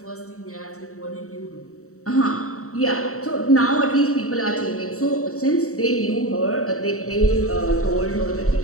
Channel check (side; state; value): right; late; 0.64 ms